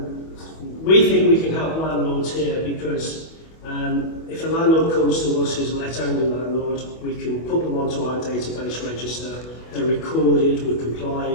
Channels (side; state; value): right; late; 25 ms